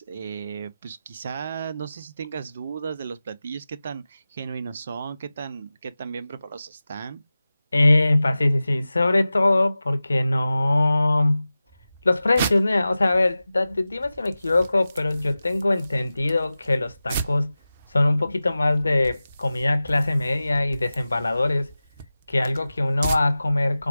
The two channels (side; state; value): both; inverted; correlation -0.96